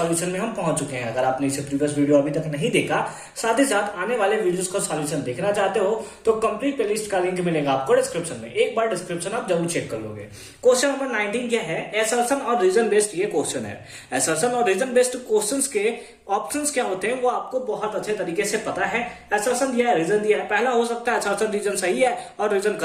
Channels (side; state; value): both; identical; correlation 1.00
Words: में हम पहुंच चुके हैं। अगर आपने इसे प्रीवियस वीडियो अभी तक नहीं देखा, साथ ही साथ आने वाले वीडियोस का सॉल्यूशन देखना चाहते हो तो कंप्लीट प्लेलिस्ट का लिंक मिलेगा आपको डिस्क्रिप्शन में। एक बार डिस्क्रिप्शन आप जरूर चेक कर लोगे। क्वेश्चन नंबर 19 क्या है? असर्शन और रीजन बेस्ड ये क्वेश्चन है। असर्शन और रीजन बेस्ड क्वेश्चंस के ऑप्शंस क्या होते हैं वो आपको बहुत अच्छे तरीके से पता है। असर्शन दिया है, रीजन दिया है। पहला हो सकता है असर्शन रीजन सही है और रीजन